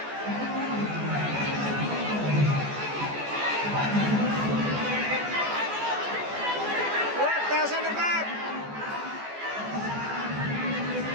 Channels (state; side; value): late; left; 14 ms